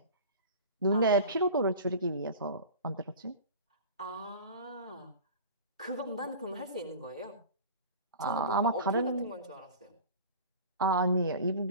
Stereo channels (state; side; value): inverted; both; correlation -0.37